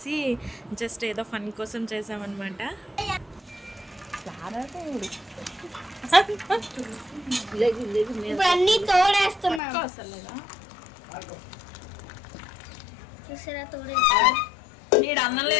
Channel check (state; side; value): drops out; right; at 9.6 s